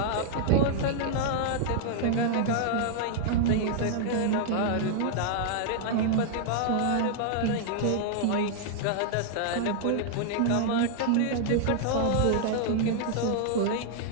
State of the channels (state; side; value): different; both; correlation -0.01